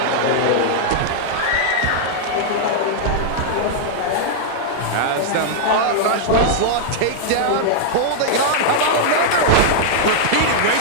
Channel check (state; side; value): different; both; correlation -0.01